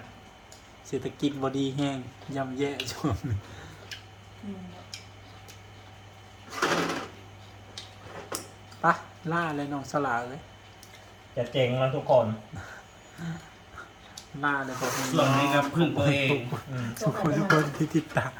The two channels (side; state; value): both; identical; correlation 1.00